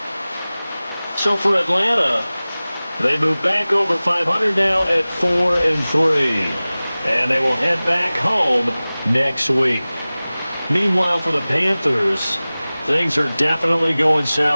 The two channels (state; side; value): inverted; both; correlation -0.98